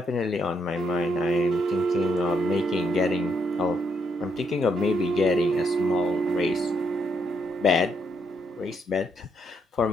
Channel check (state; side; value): normal; both; correlation 0.76